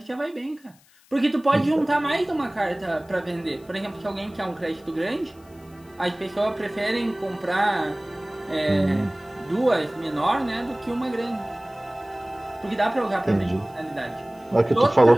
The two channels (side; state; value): left; noise; hiss, 29 dB below the sound